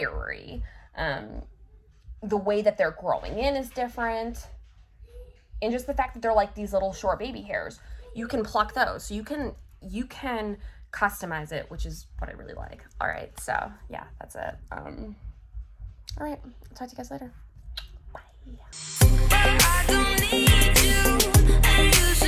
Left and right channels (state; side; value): identical; both; correlation 1.00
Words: The way that they're growing in is different. And just the fact that they're like these little short baby hairs, you can pluck those. So you can customize it, which is what I really like. All right, so yeah, that's it. All right, I'll talk to you guys later. Bye.